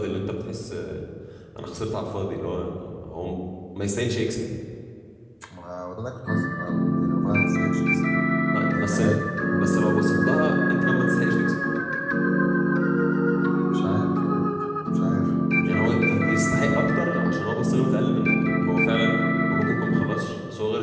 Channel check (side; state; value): both; identical; correlation 1.00